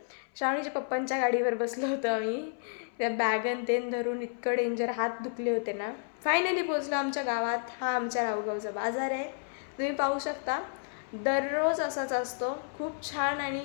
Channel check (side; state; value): right; silent; 57 dB below the other